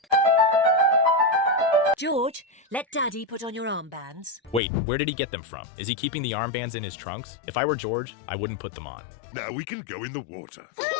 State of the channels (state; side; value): drops out; right; at 4.6 s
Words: George, let Daddy put on your armbands. Wait, where did he get them from? Is he keeping the armbands in his trunks? If I were George, I wouldn't put them on. Now we can go in the water.